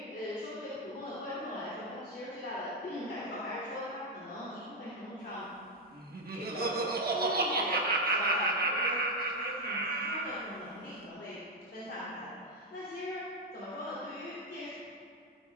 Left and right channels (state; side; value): normal; both; correlation 0.04